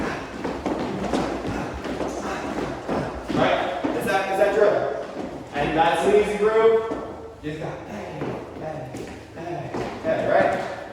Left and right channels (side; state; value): both; identical; correlation 1.00